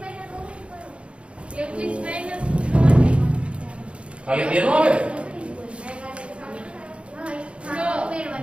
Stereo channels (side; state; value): left; late; 0.059 ms